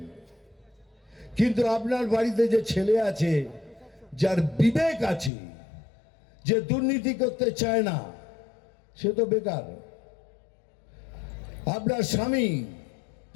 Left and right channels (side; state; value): right; drops out; at 5.3 s